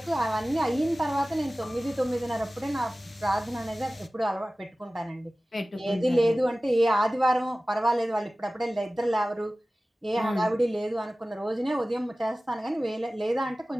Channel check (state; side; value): normal; both; correlation 0.97